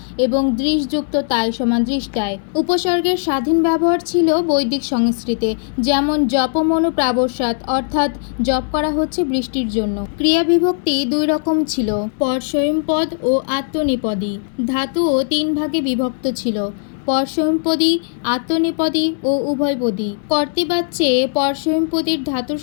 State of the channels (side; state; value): right; silent; digital silence